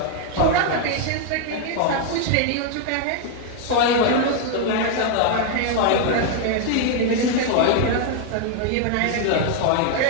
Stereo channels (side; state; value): both; different; correlation 0.00